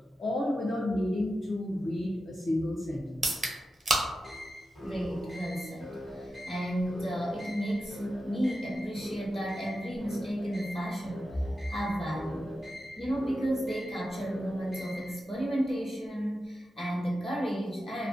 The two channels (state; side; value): normal; both; correlation 0.90